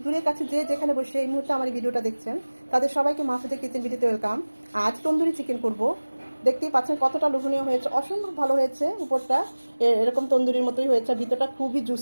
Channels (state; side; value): inverted; both; correlation -1.00